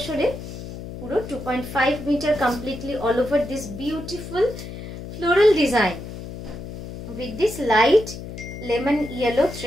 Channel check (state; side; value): noise; left; hum, 10 dB below the sound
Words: পুরো 2.5 metre completely all over this beautiful floral design with this light lemon yellow